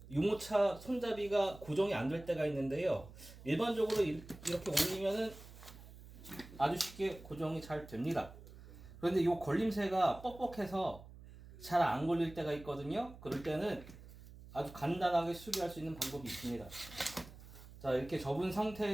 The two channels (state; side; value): noise; right; hum, 17 dB below the sound